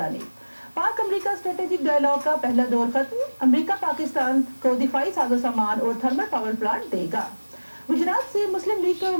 पाक अमेरिका स्ट्रेटेजिक डायलॉग का पहला दौर खत्म। अमेरिका पाकिस्तान को दिफाई साजो सामान और थर्मल पावर प्लांट देगा। गुजरात से मुस्लिम लीग के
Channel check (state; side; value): inverted; both; correlation -1.00